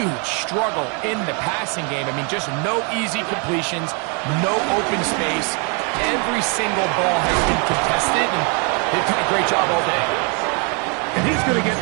struggle in the passing game. I mean, just no easy completions, no open space. Every single ball has been contested, and they've done a great job all day. And he's going to get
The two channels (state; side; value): quieter; left; 35.8 dB